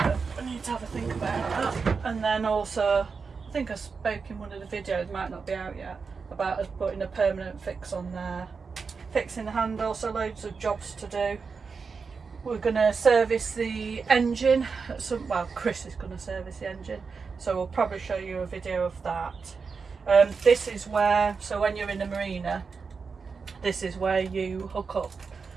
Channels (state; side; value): quieter; left; 5.1 dB